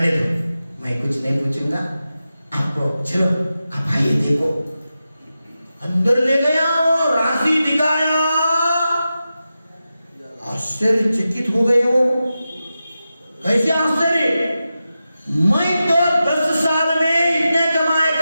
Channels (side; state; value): both; inverted; correlation -0.92